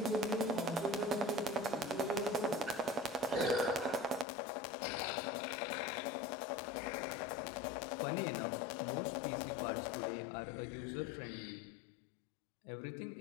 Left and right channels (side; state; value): right; drops out; at 4.2 s